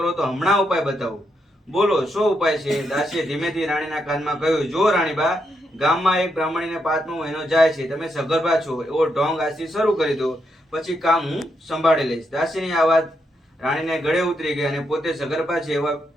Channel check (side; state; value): both; normal; correlation 0.81